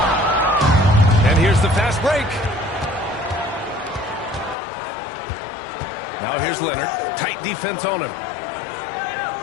And here's the fast break. Now here's Leonard. Tight defense on him.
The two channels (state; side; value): drops out; right; at 4.5 s